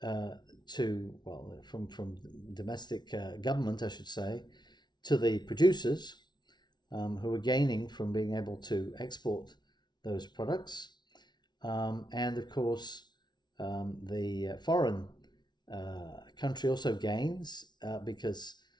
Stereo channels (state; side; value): late; right; 0.20 ms